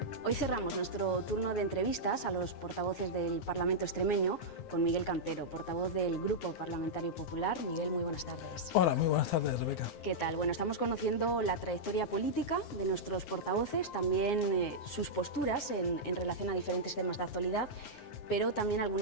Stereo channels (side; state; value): right; late; 9.6 ms